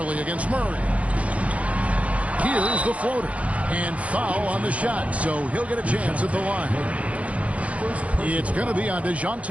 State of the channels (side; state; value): left; late; 0.065 ms